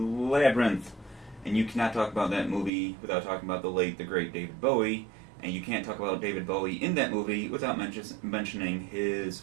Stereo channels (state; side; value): drops out; left; at 2.7 s